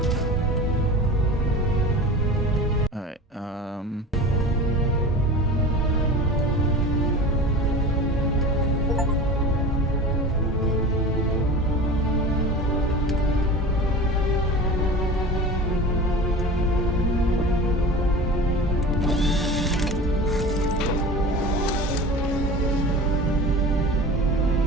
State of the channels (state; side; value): normal; both; correlation 0.34